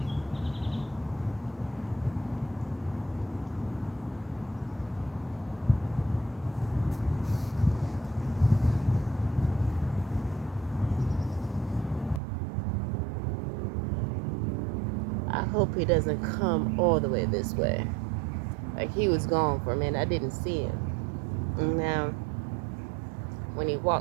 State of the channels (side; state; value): left; drops out; at 12.2 s